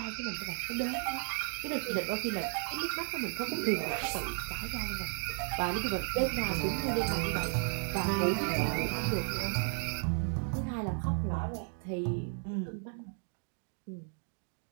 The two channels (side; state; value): left; silent; 55 dB below the other